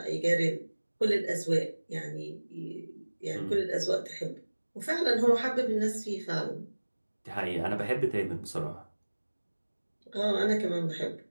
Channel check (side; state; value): both; inverted; correlation -1.00